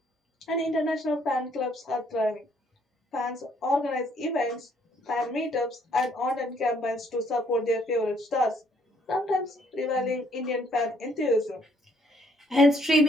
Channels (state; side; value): normal; both; correlation 0.66